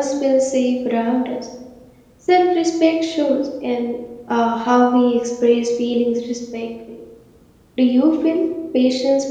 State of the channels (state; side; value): identical; both; correlation 1.00